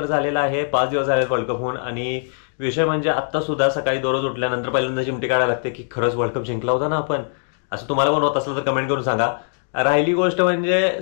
झालेला आहे, 5 दिवस झाले वर्ल्ड कप होऊन। आणि विषय म्हणजे आत्ता सुद्धा सकाळी दररोज उठल्यानंतर पहिल्यांदा चिमटी काढायला लागते की खरंच वर्ल्ड कप जिंकला होता ना आपण। असं तुम्हाला पण होत असलं तर कमेंट करून सांगा। राहिली गोष्ट म्हणजे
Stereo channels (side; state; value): right; silent; 63 dB below the other